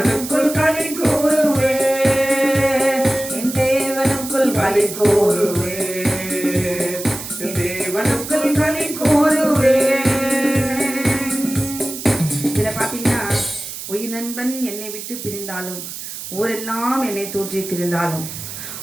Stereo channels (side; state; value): right; noise; hiss, 9 dB below the sound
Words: களி கூறுவேன். என் தேவனுக்குள் களி கூறுவேன். என் தேவனுக்குள் களி கூறுவேன். இதுல பாத்தீங்கன்னா, உயிர் நண்பன் என்னை விட்டு பிரிந்தாலும், ஊரெல்லாம் என்னை தூற்றி திரிந்தாலும்,